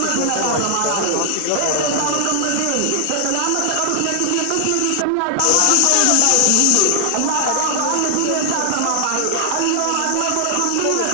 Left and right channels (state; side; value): different; both; correlation 0.00